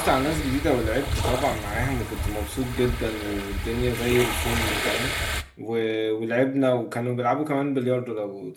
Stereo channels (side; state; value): both; identical; correlation 1.00